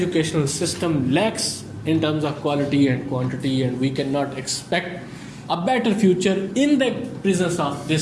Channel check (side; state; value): both; identical; correlation 1.00